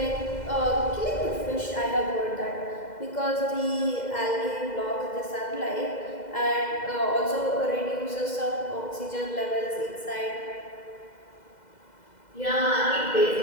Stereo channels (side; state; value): right; late; 2.0 ms